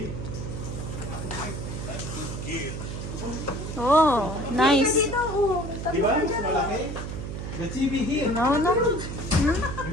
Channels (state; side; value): noise; right; hum, 6 dB below the sound